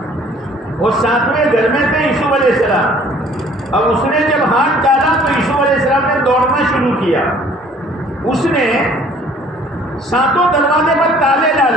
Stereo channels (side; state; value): both; normal; correlation 0.55